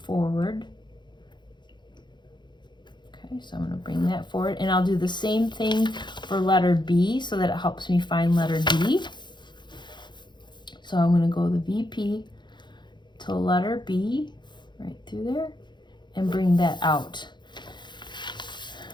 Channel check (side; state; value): right; late; 0.22 ms